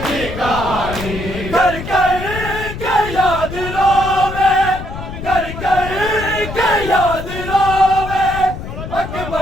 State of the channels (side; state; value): left; noise; rumble, 9 dB below the sound